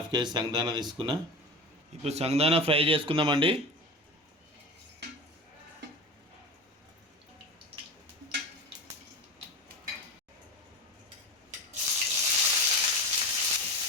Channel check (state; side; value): normal; both; correlation 0.28